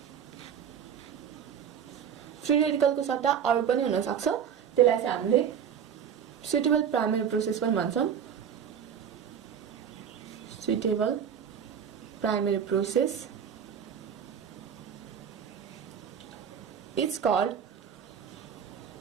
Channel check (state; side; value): quieter; left; 8.1 dB